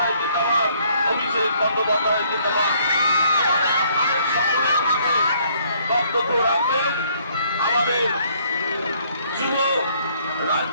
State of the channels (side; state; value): both; inverted; correlation -0.64